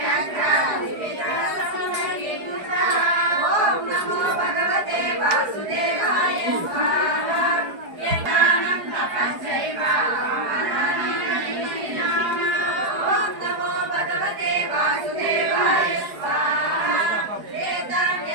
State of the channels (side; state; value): left; late; 4.7 ms